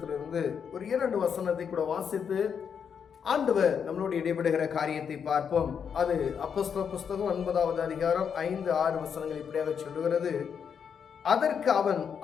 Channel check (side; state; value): right; quieter; 7.2 dB